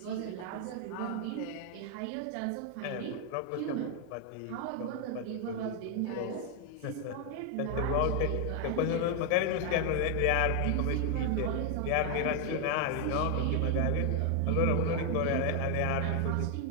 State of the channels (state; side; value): different; both; correlation 0.00